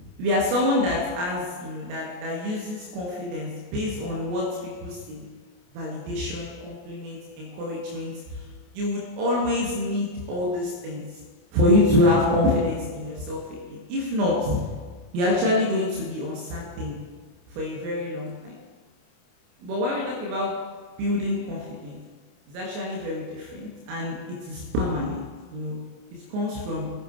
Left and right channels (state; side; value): late; left; 28 ms